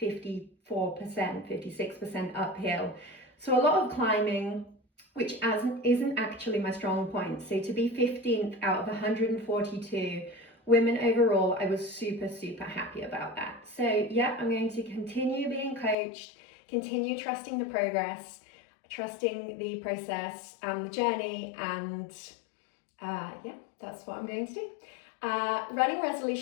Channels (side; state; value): right; drops out; at 16.0 s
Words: 56% uphill. So a lot of climbing, which isn't actually my strong point. So to be 15th out of 142 women overall, I was super happy about that. So yeah, I'm going to continue being coached, continue trusting the progress, trusting the process and the journey, and that's what I'm going to do. Running